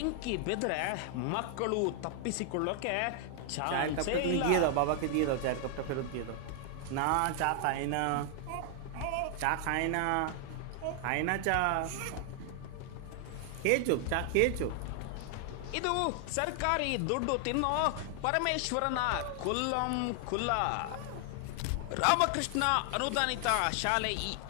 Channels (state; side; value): different; both; correlation 0.00